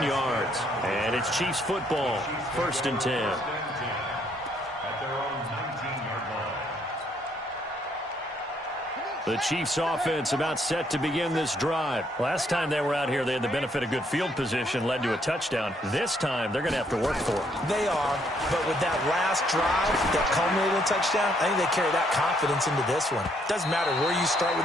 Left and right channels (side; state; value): both; normal; correlation 0.70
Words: yards. And it's Chiefs football. 1st and 10. At their own 19-yard line. The Chiefs offense about set to begin this drive. Last time they were out here, they had the benefit of good field position, led to a touchdown. This time, they're going to have to work for it. They are, but with that last drive that culminated in a touchdown, I think they carry that confidence into this one. Doesn't matter where you start